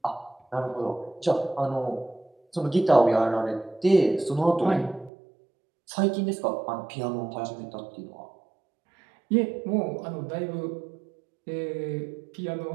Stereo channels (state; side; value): drops out; left; at 5.1 s